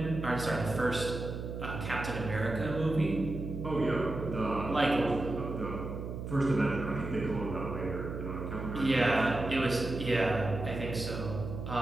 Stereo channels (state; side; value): noise; right; hum, 6 dB below the sound